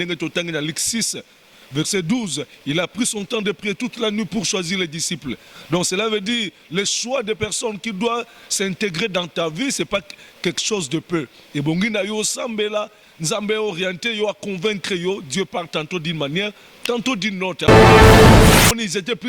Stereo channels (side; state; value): both; identical; correlation 1.00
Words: totangi na Luc 6 verset 12, il a pris son temps de prier toute la nuit pour choisir les disciples. Donc cela veut dire le choix des personnes qui doivent s'intégrer dans ta vie, c'est pas quelque chose de peu. Et bon, yo sambela, nzambe orienté, yo a convaincre yo, Dieu parle tantôt d'une manière, tantôt d'une autre. Ils étaient